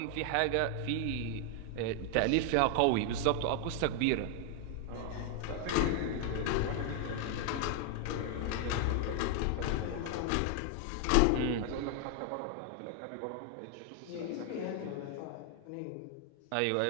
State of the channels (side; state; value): both; different; correlation 0.00